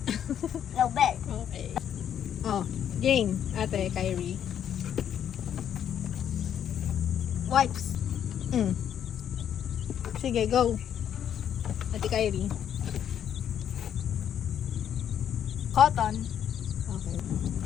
Nobel. Okay. Oh, game. Ate, Kyrie. Wipes. Sige, go. Ate Kyrie. Cotton. Okay.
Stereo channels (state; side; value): quieter; right; 9.5 dB